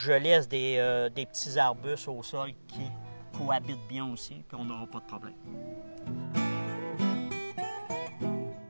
laisse des petits arbustes au sol qui cohabitent bien aussi, puis on n'aura pas de problème.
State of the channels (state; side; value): inverted; both; correlation -1.00